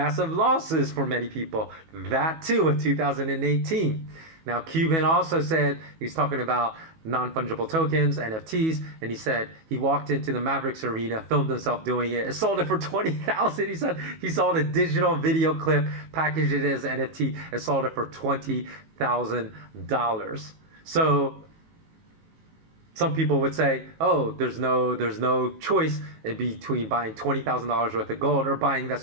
losses for many people? That too in 2018. Now, Cuban also said, he's talking about non-fungible tokens, NFTs, and he said he walked into the Mavericks arena, filmed himself doing it, and sold it for $20,000. He said he saw the digital video clip, packaged it as NFT, and sold it for $20,000. So some people would say, oh, there's no choice in between buying $20,000 worth of gold or buying that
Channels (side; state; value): left; late; 18 ms